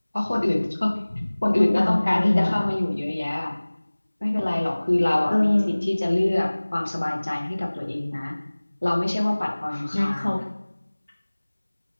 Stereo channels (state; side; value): inverted; both; correlation -1.00